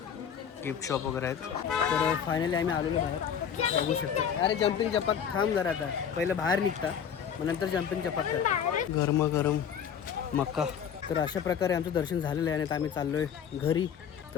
गिफ्ट शॉप वगैरे आहेत. तर फायनली आम्ही आलेलो बाहेर बघू शकतो. अरे जम्पिंग चपाक थांब जरा. आता पहिलं बाहेर निघता मग नंतर जम्पिंग चपाक कर. गरम मक्का. तर अशा प्रकारे आमचं दर्शन झालेलं आहे आणि आता आम्ही चाललो आहे घरी.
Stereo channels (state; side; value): quieter; right; 8.0 dB